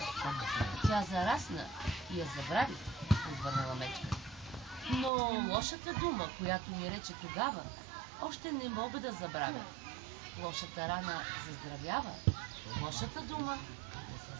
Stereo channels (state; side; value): drops out; left; at 5.1 s